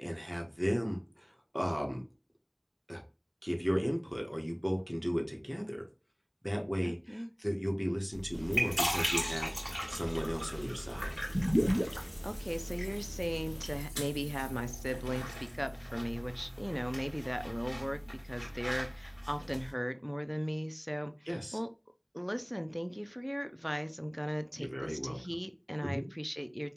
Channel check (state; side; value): identical; both; correlation 1.00